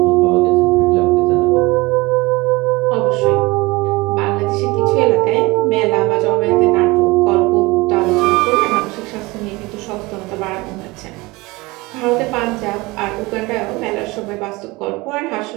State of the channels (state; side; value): quieter; left; 22.8 dB